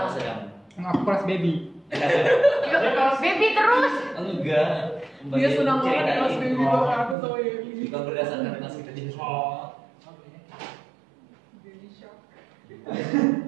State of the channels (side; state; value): left; drops out; at 7.2 s